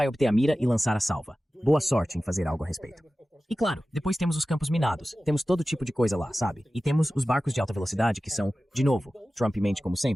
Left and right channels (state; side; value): normal; both; correlation 0.95